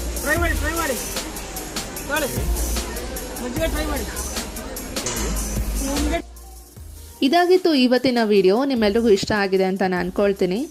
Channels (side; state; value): both; identical; correlation 1.00